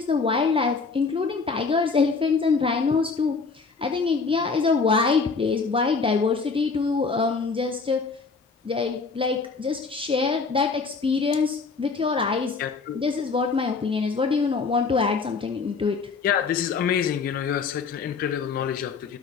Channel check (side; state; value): right; quieter; 4.7 dB